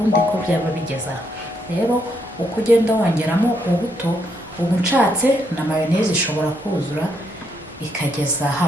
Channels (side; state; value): both; normal; correlation 0.75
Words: ko byaba bigeza. Rero uko ugenda wongeramo ubuto, ubu nshatse na mayonnaise ishobora kuzura ikageza